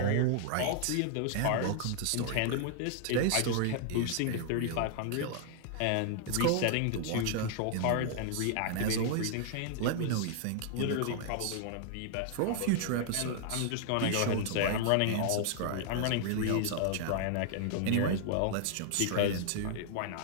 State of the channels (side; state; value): both; different; correlation -0.01